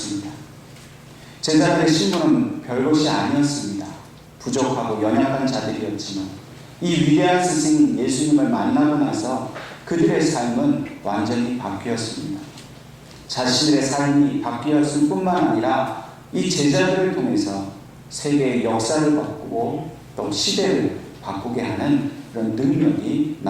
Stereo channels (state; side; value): identical; both; correlation 1.00